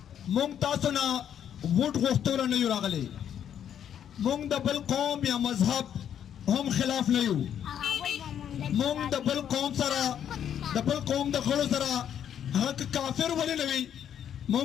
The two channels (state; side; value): quieter; right; 9.4 dB